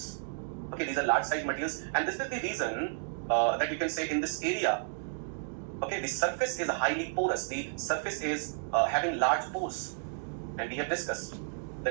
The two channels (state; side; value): silent; left; digital silence